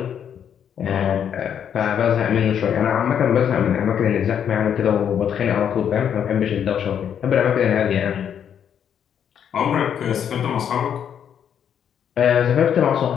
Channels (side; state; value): right; quieter; 8.6 dB